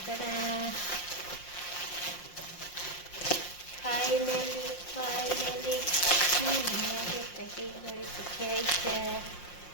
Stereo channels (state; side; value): late; right; 5.6 ms